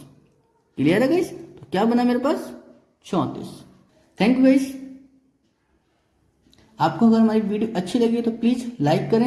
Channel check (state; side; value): identical; both; correlation 1.00